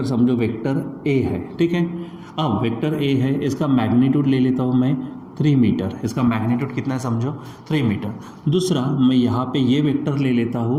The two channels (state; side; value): identical; both; correlation 1.00